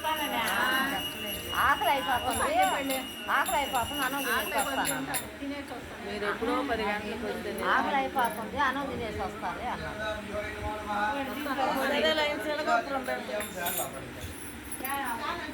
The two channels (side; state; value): both; identical; correlation 1.00